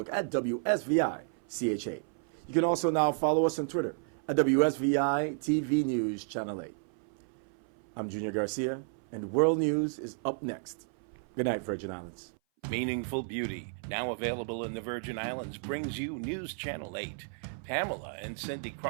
at WSVI-CHA. You can also now follow us on Twitter at WSVI-TV News Channel 8. I'm Junior Garcia, and World News is up next. Good night, Virgin Islands. Meaningful Beauty, now available in the Virgin Islands, brings you News Channel 8. Pamela and Cindy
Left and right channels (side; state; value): left; silent; 56 dB below the other